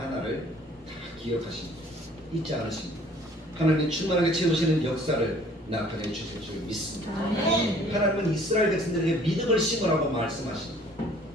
다 기억하십니다. 잊지 않으십니다. 하나님이 충만하게 채우시는 역사를 나타내 주실 줄 믿습니다. 하나님은 이스라엘 백성들에게 믿음을 심으라고 말씀하십니다.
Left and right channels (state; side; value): normal; both; correlation 0.55